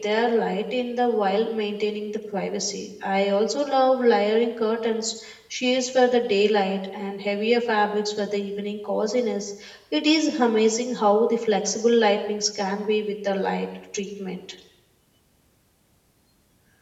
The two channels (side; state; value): both; identical; correlation 1.00